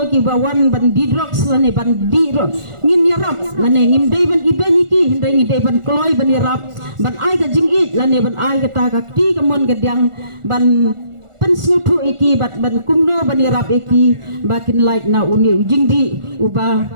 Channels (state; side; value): late; left; 1.4 ms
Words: ki ba wan ban di drugs la ne ban di ro ngin yarap la ne ngim dei ban ibeni ki hindai ngi dei ban kloy ban yarap ban ai ka jingit la ne ban ai kata kakti kemon gedang ban pensutu iki bat ban kumno ban irap iki bakin like na uni jingdi uba